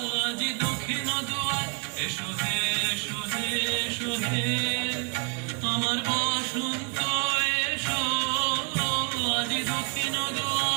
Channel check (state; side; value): quieter; left; 37.0 dB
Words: আজি দক্ষিণ দুয়ার, এসো হে এসো হে এসো হে আমার বসন্ত এসো, আজি দক্ষিণ